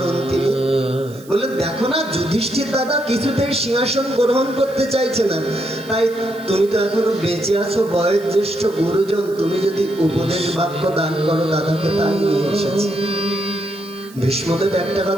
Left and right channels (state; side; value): noise; right; hiss, 23 dB below the sound